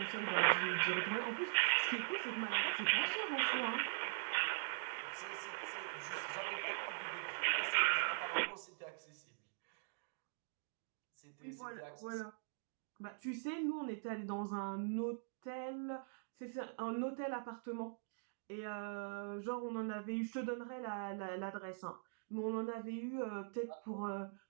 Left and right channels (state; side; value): silent; left; digital silence